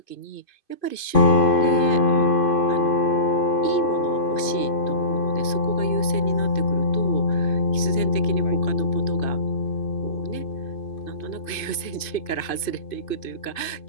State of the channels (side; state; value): right; late; 2.5 ms